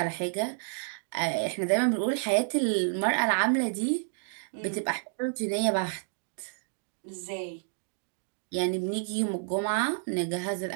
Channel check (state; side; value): silent; left; digital silence